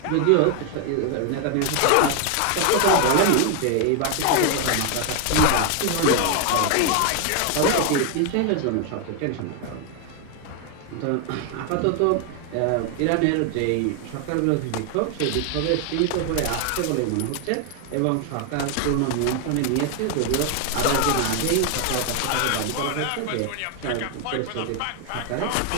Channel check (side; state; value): both; different; correlation 0.01